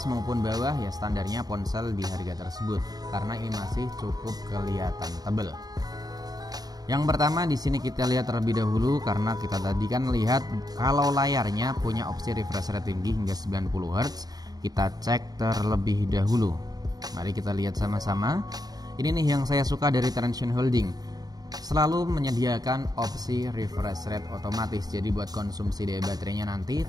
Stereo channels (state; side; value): late; left; 0.19 ms